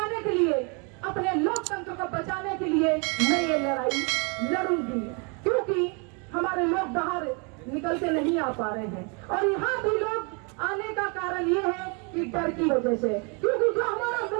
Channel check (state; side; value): quieter; left; 34.2 dB